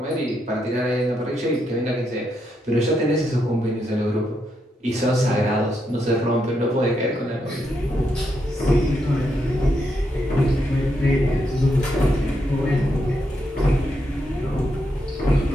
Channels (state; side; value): normal; both; correlation 0.81